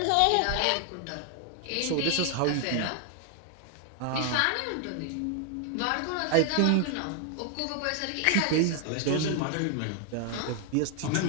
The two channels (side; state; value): both; different; correlation 0.00